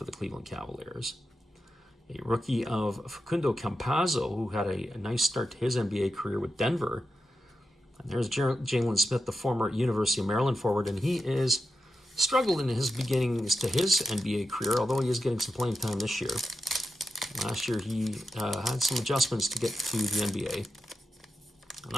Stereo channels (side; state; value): both; normal; correlation 0.89